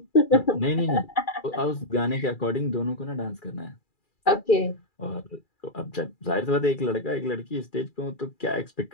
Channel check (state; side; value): late; right; 2.4 ms